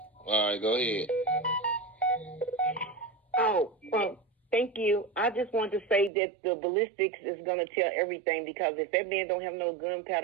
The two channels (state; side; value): drops out; left; at 6.1 s